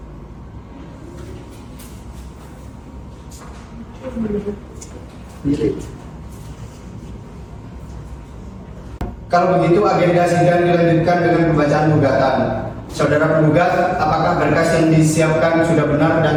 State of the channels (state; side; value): identical; both; correlation 1.00